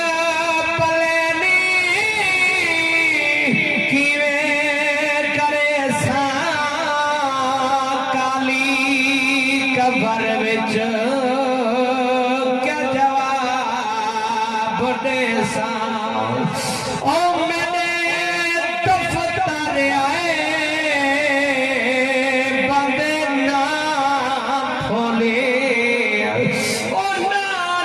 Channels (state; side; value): identical; both; correlation 1.00